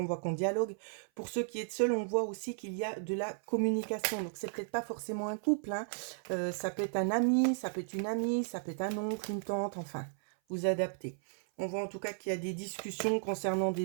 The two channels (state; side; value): silent; left; 55 dB below the other